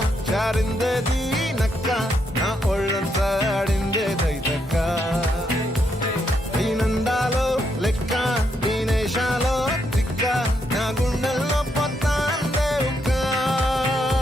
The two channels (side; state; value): both; normal; correlation 0.78